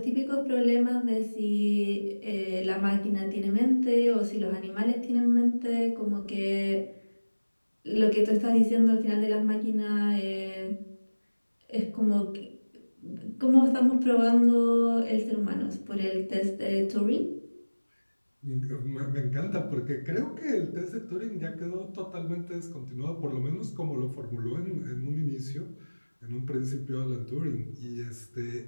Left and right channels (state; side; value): inverted; both; correlation -1.00